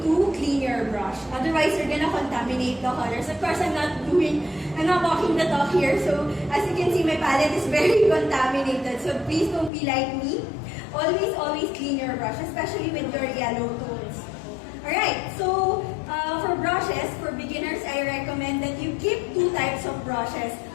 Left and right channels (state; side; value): drops out; right; at 9.7 s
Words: to clean your brush. Otherwise, you're gonna contaminate the colors. Of course, I'm not walking the talk here. So, as you can see, my palette is very contaminated. So, please don't be like me. Always, always clean your brush, especially with your yellow tones. Alright, so, for brushes, for beginners, I recommend that you keep two types of brushes.